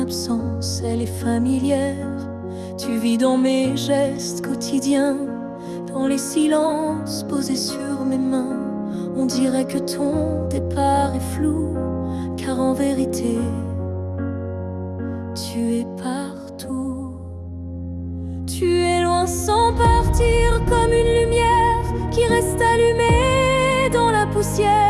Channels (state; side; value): identical; both; correlation 1.00